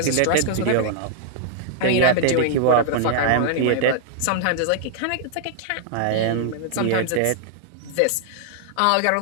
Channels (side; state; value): both; different; correlation -0.01